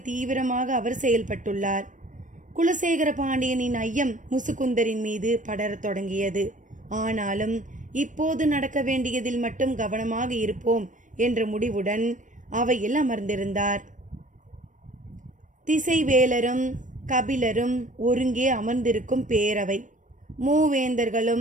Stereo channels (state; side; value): late; left; 0.37 ms